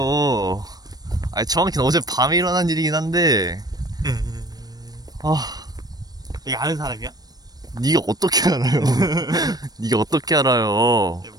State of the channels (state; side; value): late; left; 0.19 ms